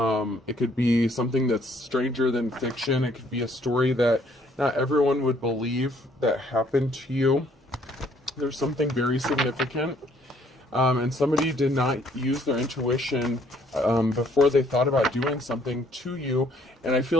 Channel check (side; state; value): both; normal; correlation 0.64